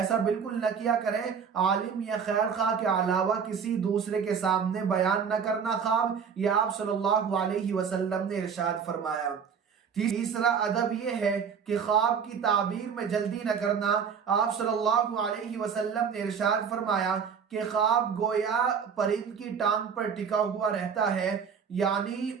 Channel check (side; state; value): left; quieter; 6.8 dB